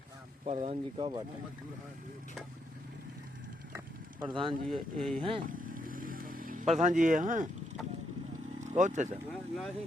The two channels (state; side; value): normal; both; correlation 0.78